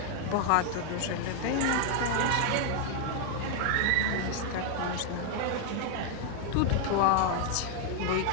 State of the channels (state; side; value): different; both; correlation 0.00